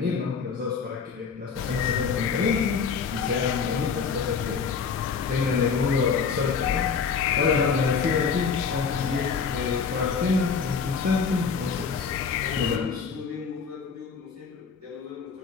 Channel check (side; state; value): right; quieter; 5.8 dB